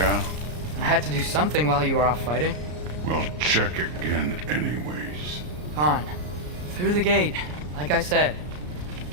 I had to do something while you were off fighting. Well, check again anyways. Fine. Through the gate, like I said.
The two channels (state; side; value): late; left; 33 ms